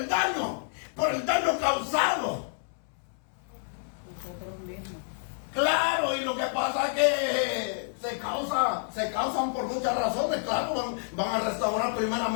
el daño causado. Nosotros mismos. Claro, y lo que pasa es que se causan por muchas razones. Claro, van a restaurar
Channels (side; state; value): right; silent; 59 dB below the other